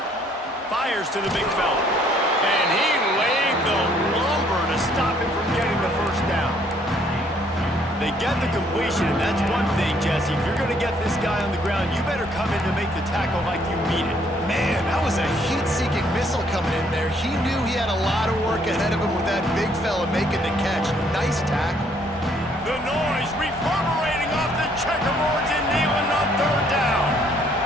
Fires to the big fella. And he laid the lumber to stop him from getting the first down. They get the completion, and that's one thing, Jesse. If you're going to get this guy on the ground, you better come in to make the tackle like you mean it. Man, that was a heat-seeking missile coming in there. He knew he had a lot of work ahead of him with that big fella making the catch. Nice tackle. The noise reverberating off the checkerboards in Neyland on third down.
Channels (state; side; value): normal; both; correlation 0.65